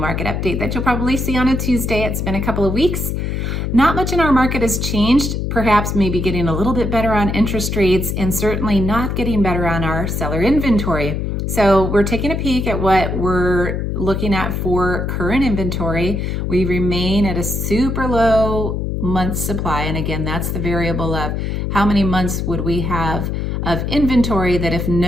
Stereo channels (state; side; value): noise; left; hum, 2 dB below the sound